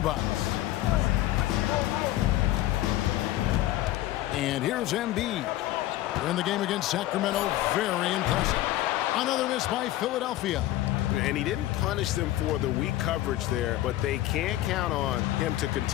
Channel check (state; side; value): quieter; right; 15.1 dB